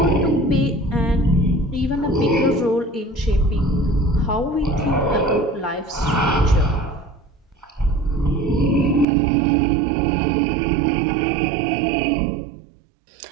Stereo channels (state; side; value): drops out; left; at 9.1 s